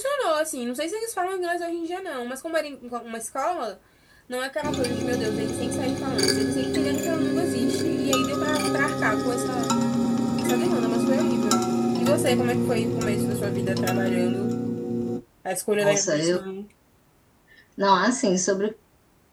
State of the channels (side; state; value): both; identical; correlation 1.00